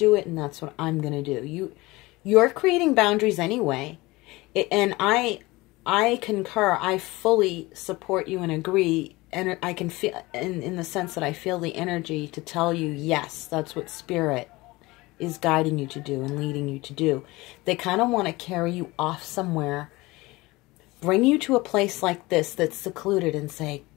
it, and that's what I'm going to do. You're creating boundaries anyway. And I concur. I fully support you and agree. And I can feel, in the sense that I feel the energy to tell you, yes, that's what spirit is guiding you to do and leading you to do. They kind of want to carry you off somewhere, bring you to a place like this that's secluded and say,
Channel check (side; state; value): right; quieter; 21.3 dB